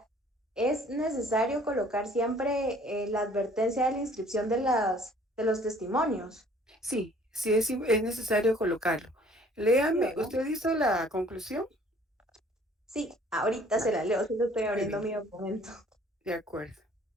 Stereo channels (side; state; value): both; normal; correlation 0.56